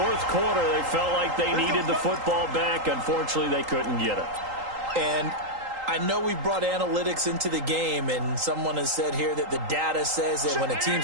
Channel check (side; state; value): left; late; 3.8 ms